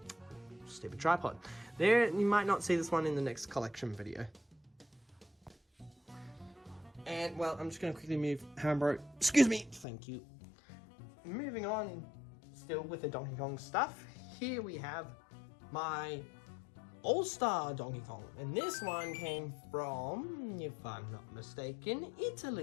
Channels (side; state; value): right; drops out; at 9.9 s